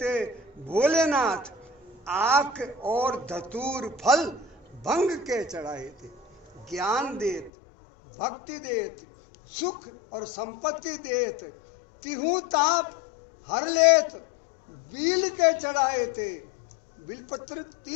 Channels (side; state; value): right; drops out; at 7.5 s